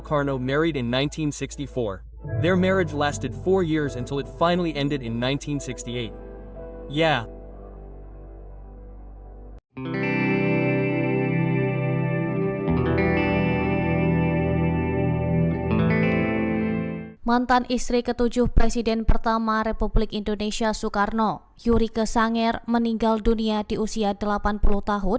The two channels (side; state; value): both; identical; correlation 1.00